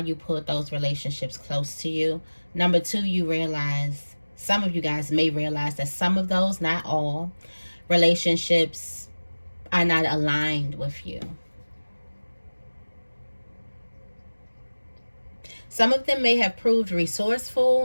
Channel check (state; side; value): inverted; both; correlation -1.00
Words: pulled those relationships close to you. Number two, you realize, some of you guys may realize that some of those, not all, relationships are not aligned with you. Some of them may have proved